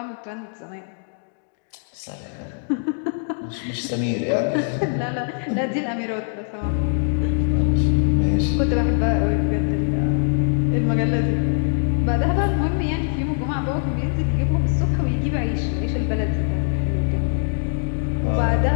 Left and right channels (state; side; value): silent; right; digital silence